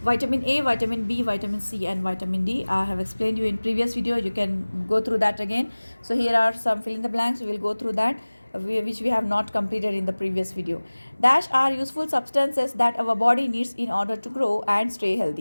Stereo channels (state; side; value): inverted; both; correlation -1.00